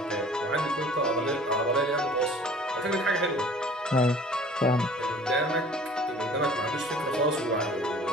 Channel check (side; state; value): both; normal; correlation 0.48